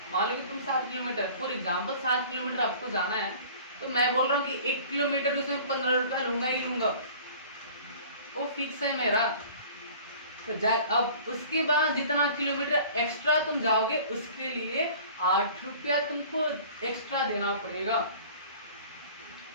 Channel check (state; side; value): inverted; both; correlation -0.46